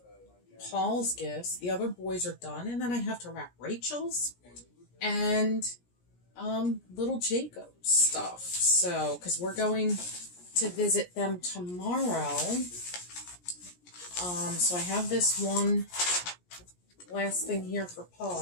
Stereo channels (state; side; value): late; right; 17 ms